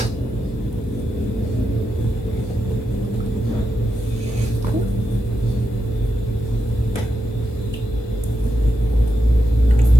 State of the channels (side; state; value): both; normal; correlation 0.86